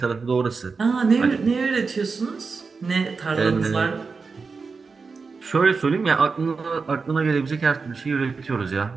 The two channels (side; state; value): left; quieter; 4.7 dB